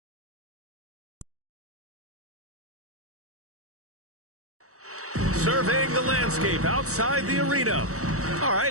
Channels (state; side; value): late; left; 0.65 ms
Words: Surveying the landscape outside the arena. All